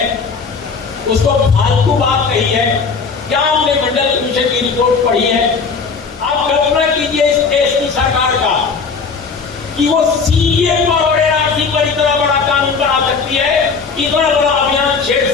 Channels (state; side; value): quieter; right; 5.0 dB